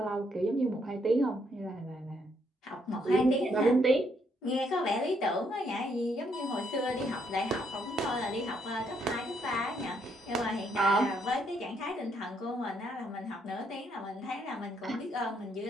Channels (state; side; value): normal; both; correlation 0.73